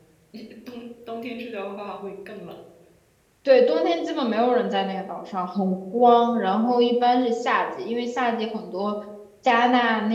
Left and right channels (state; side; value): identical; both; correlation 1.00